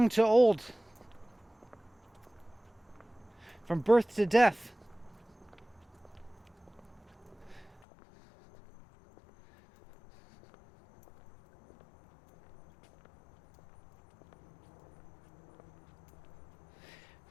to old, from birth to death.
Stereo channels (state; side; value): drops out; right; at 7.8 s